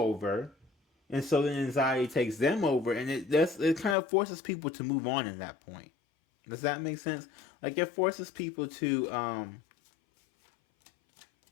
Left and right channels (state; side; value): drops out; right; at 4.0 s